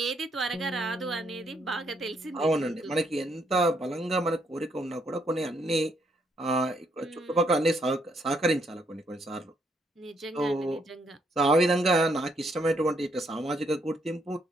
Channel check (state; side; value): normal; both; correlation 0.73